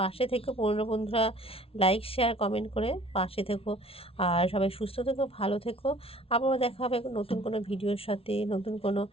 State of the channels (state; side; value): late; right; 0.27 ms